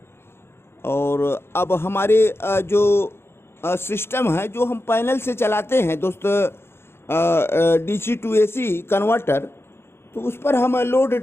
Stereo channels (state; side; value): late; right; 0.12 ms